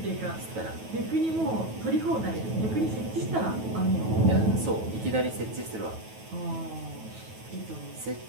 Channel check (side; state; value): left; late; 9.2 ms